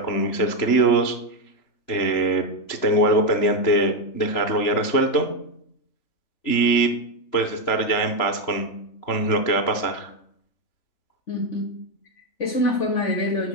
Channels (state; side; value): late; right; 3.0 ms